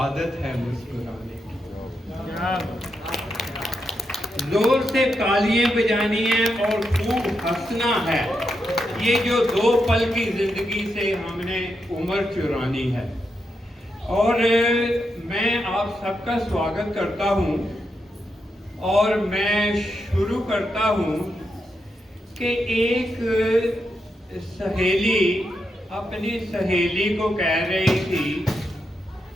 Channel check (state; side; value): normal; both; correlation 0.84